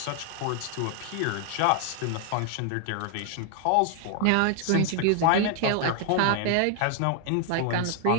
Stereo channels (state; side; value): different; both; correlation 0.00